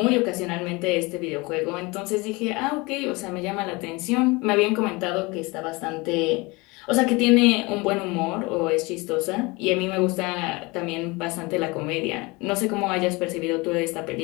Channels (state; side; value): quieter; right; 25.0 dB